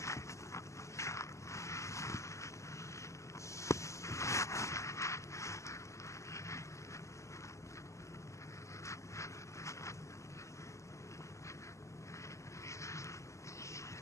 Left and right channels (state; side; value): late; right; 0.15 ms